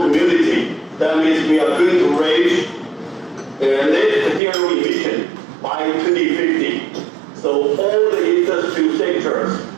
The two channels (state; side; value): drops out; left; at 4.4 s